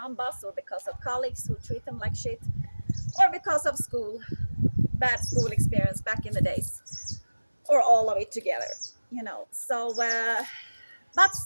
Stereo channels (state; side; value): inverted; both; correlation -1.00